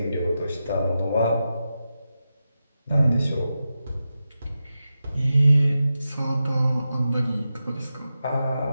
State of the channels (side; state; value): both; inverted; correlation -0.90